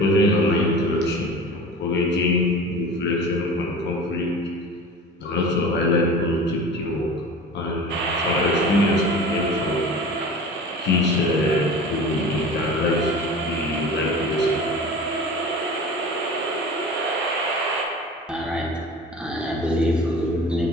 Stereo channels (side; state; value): both; normal; correlation 0.38